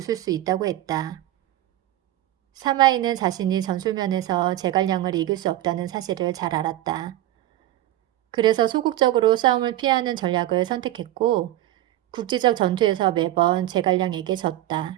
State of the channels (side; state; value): left; quieter; 14.5 dB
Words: 수 있다고 했다. 사마이는 자신이 전술면에서 제갈량을 이길 수 없다는 사실을 잘 알았다. 그래서 소극적으로 싸움을 피하는 전략을 선택했고 국지적 전투에서 매번 제갈량에게